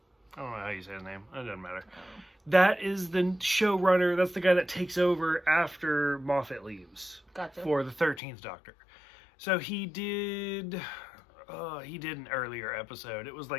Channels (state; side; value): drops out; right; at 8.2 s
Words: I don't know how you say his name. It doesn't matter. That is the showrunner. That's the guy that takes over after Moffat leaves. Gotcha. For the 13th Doctor. So, he did an earlier episode. It was